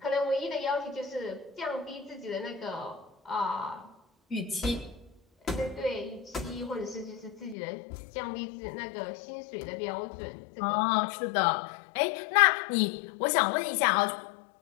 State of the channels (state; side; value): drops out; right; at 7.6 s